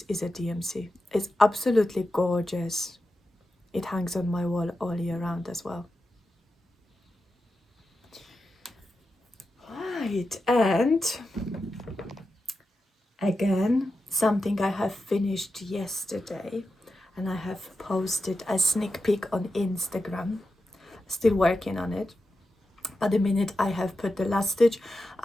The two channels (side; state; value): both; normal; correlation 0.90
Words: is a DMC. It's absolutely gorgeous. it hangs on my wall all year round as well. Right, and again, something I have finished yesterday, and I have posted a sneak peek on Instagram. Still working on it. But the minute I have put the last stitch,